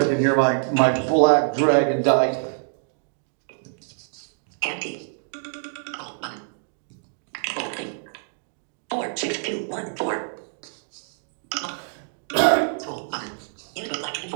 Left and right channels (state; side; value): silent; left; digital silence